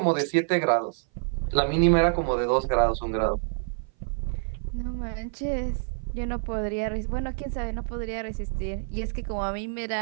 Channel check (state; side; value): silent; left; 57 dB below the other